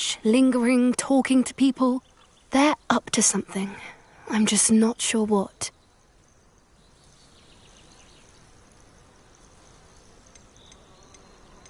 lingering, talking to people. They're up to something. I'm just not sure what.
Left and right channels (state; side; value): identical; both; correlation 1.00